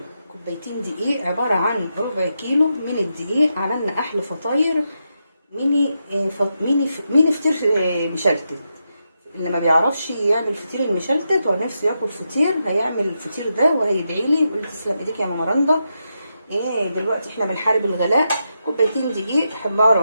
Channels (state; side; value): inverted; both; correlation -0.85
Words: كوبايتين دقيق عبارة عن ربع كيلو من الدقيق. عملنا أحلى فطاير ميني فطير مشلتت. اللي ما بيعرفش يعمل فطير المشلتت ونفسه ياكل فطير هيعمل الفطير ده وهيدعي لي يقول تسلم ايديك يا ماما رندا. دلوقتي احنا بنحارب الغلاء. كوبايتين دقيق